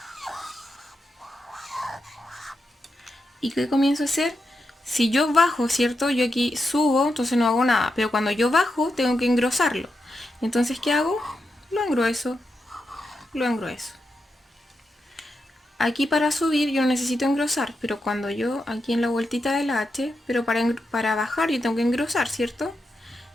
y ¿qué comienzo a hacer? Si yo bajo, ¿cierto? Yo aquí subo, entonces no hago nada, pero cuando yo bajo tengo que engrosarlo. Entonces, ¿qué hago? Lo engrueso, lo engrueso. Aquí para subir yo no necesito engrosar, pero cuando yo aquí en la vueltita de la H, pero para bajar yo tengo que engrosar, ¿cierto?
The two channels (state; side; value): normal; both; correlation 0.86